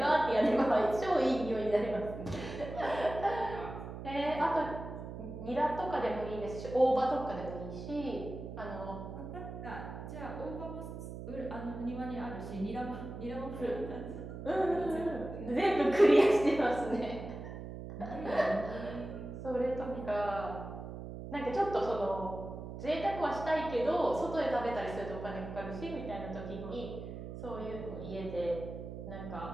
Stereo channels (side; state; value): right; noise; hum, 9 dB below the sound